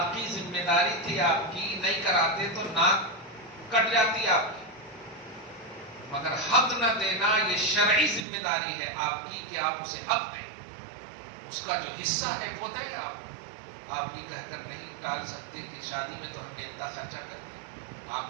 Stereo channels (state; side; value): drops out; left; at 8.2 s